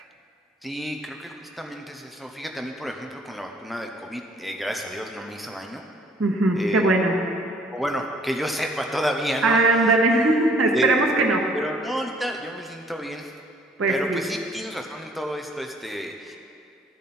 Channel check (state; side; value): normal; both; correlation 0.59